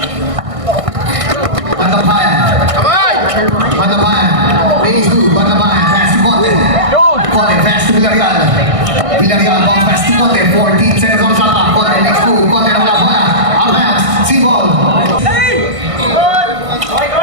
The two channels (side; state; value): left; late; 1.6 ms